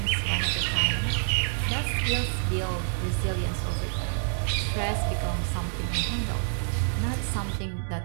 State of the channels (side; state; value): left; silent; digital silence